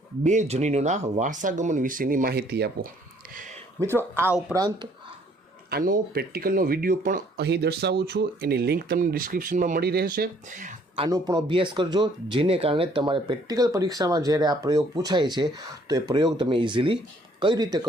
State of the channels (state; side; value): normal; both; correlation 0.62